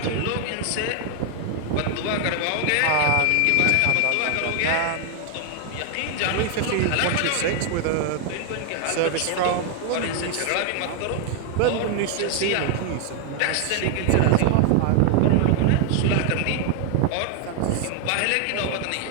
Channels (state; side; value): different; both; correlation 0.00